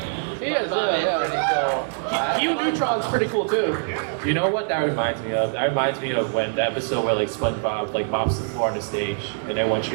SpongeBob is pretty cool. SpongeBob's pretty cool too. You know what that reminds me of? That reminds me of when the episode where like SpongeBob like mops the floor on the stage and everyone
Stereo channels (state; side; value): silent; left; digital silence